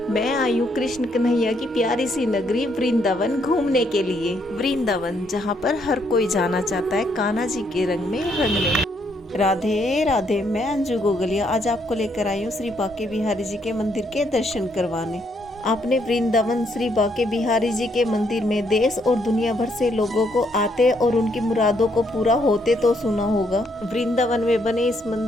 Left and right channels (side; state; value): both; normal; correlation 0.73